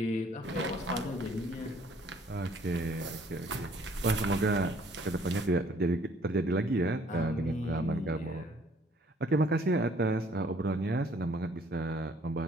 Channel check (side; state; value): both; normal; correlation 0.60